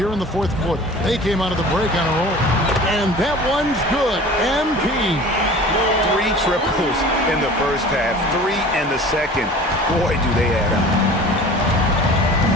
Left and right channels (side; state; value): both; normal; correlation 0.42